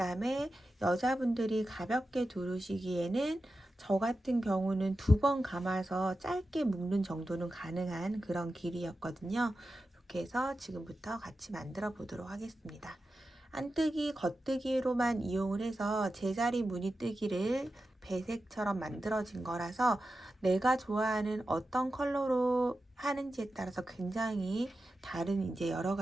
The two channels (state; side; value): normal; both; correlation 0.92